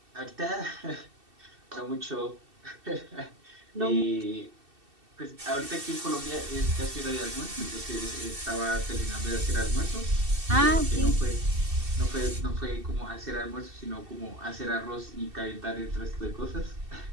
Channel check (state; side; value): late; left; 2.7 ms